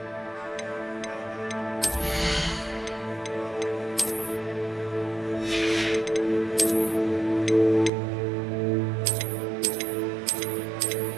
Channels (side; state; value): left; drops out; at 7.9 s